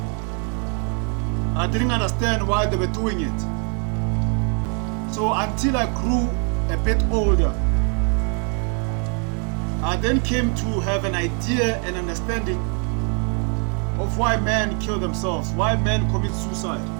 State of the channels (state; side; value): quieter; left; 39.6 dB